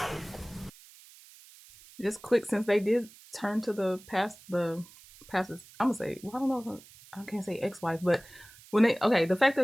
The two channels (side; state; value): right; noise; hiss, 22 dB below the sound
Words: Just quick, since they did turn to the pastor's, I'm gonna say, well, I don't know, I can't say ex-wife, but when the fact